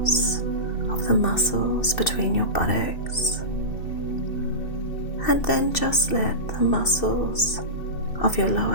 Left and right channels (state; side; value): late; right; 2.7 ms